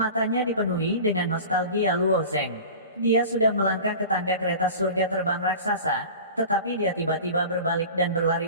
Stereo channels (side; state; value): both; inverted; correlation -0.36